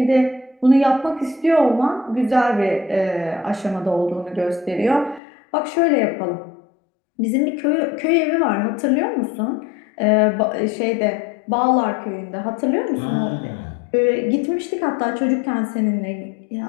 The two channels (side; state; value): right; drops out; at 5.2 s